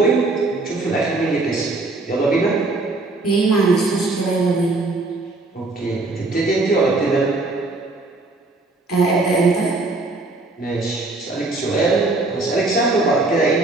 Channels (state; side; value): quieter; left; 3.2 dB